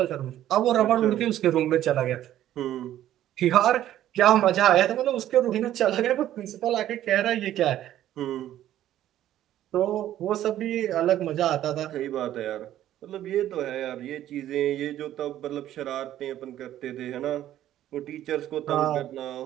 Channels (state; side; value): quieter; left; 12.5 dB